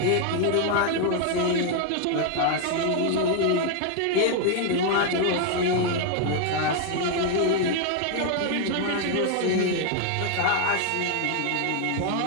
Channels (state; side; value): different; both; correlation 0.00